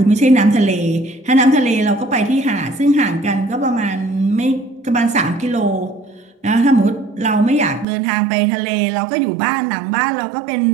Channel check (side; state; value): left; drops out; at 7.9 s